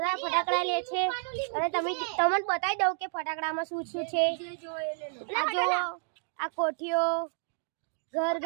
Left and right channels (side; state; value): left; silent; digital silence